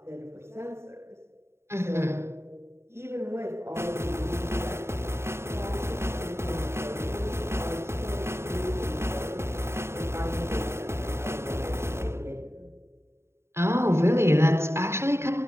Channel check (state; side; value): late; left; 0.13 ms